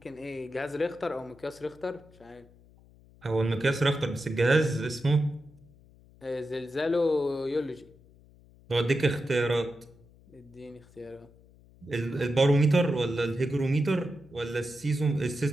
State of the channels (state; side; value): noise; left; hum, 26 dB below the sound